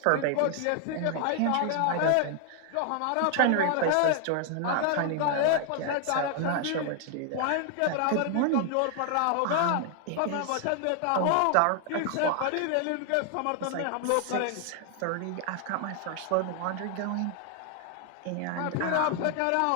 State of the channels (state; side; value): different; both; correlation 0.00